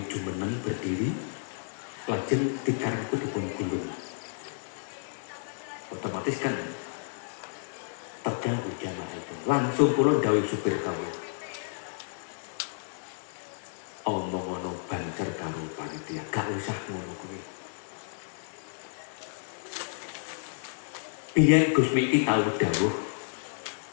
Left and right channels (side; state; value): right; silent; 57 dB below the other